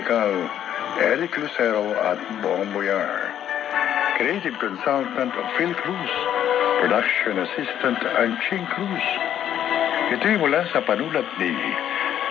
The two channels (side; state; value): right; quieter; 10.4 dB